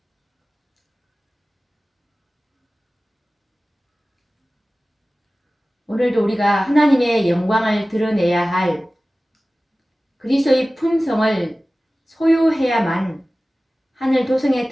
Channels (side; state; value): both; normal; correlation 0.97